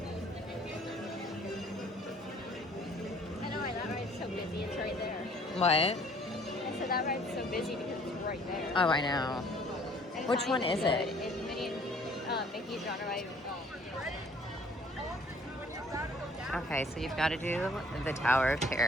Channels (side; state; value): both; normal; correlation 0.57